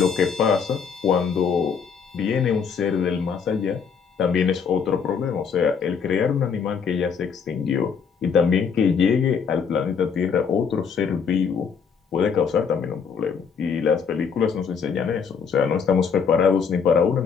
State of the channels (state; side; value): quieter; right; 6.4 dB